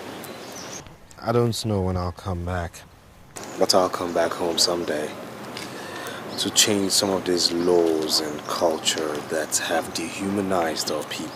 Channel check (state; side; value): identical; both; correlation 1.00